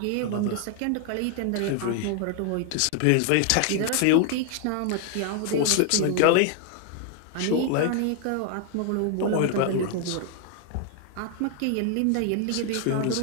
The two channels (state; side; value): different; both; correlation 0.00